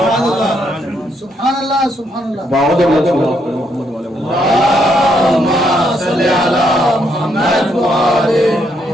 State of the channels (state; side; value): normal; both; correlation 0.75